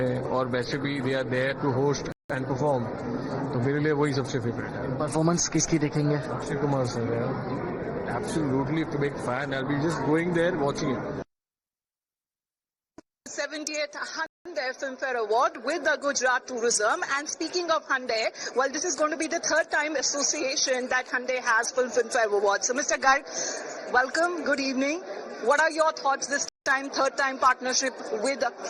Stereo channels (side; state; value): both; identical; correlation 1.00